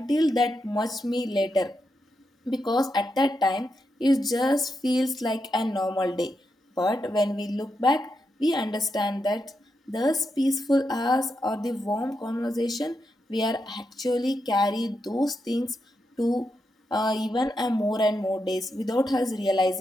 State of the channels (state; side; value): normal; both; correlation 0.85